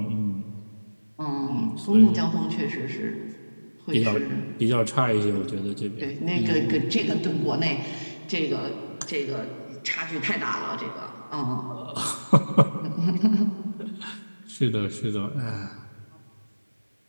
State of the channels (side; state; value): both; inverted; correlation -1.00